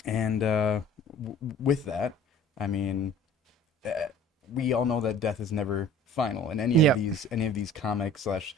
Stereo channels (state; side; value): normal; both; correlation 0.47